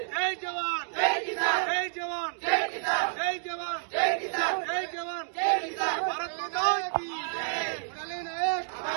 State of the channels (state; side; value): silent; left; digital silence